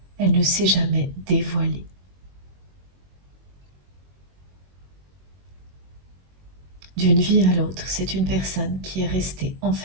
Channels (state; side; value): late; left; 21 ms